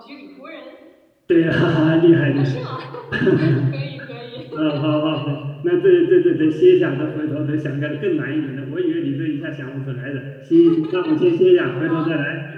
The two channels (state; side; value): identical; both; correlation 1.00